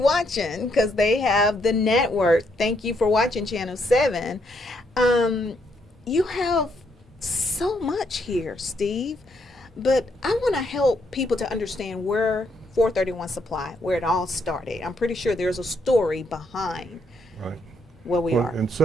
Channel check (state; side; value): normal; both; correlation 0.74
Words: because they have the network. Thank you for watching Channel 7. You have so much here, Steve. But I want to help people to understand where 431 Supply, where it all started. I'm pretty sure there's a story behind Right. where we Well, are. in